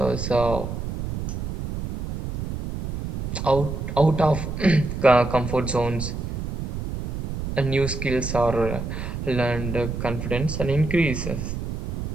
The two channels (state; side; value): noise; right; rumble, 5 dB below the sound